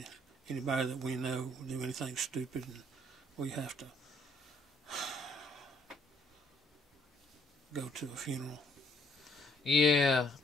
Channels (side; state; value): both; normal; correlation 0.65